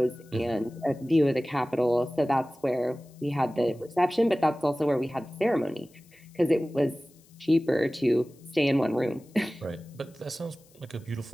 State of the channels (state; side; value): noise; left; hiss, 29 dB below the sound